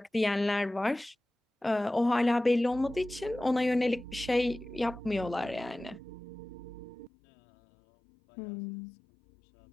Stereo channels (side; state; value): right; drops out; at 7.1 s